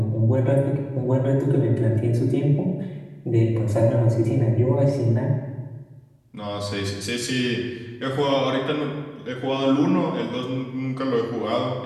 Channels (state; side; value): identical; both; correlation 1.00